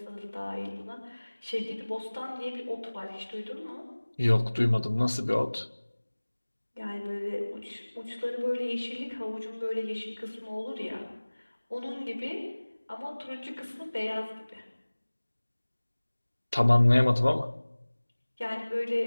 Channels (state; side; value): inverted; both; correlation -1.00